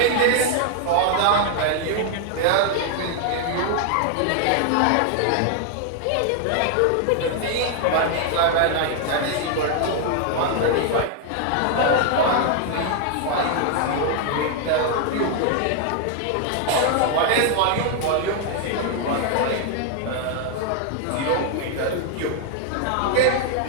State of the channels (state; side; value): different; both; correlation 0.00